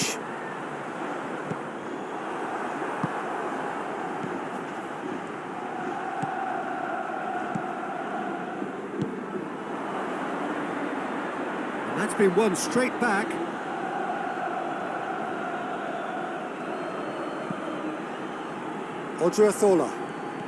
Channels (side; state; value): both; identical; correlation 1.00